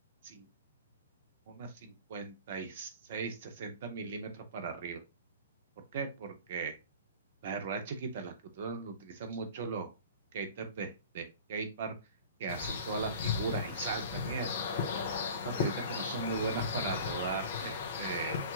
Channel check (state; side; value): inverted; both; correlation -0.40